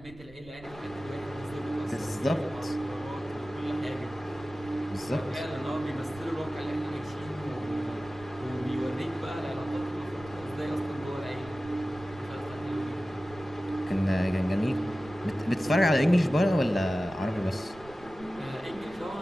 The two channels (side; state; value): right; noise; rumble, 20 dB below the sound